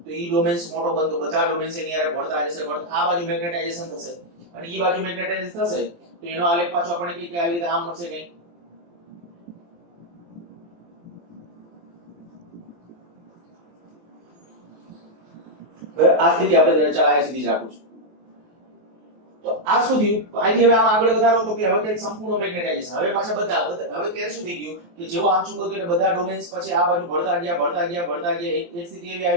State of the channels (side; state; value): left; late; 23 ms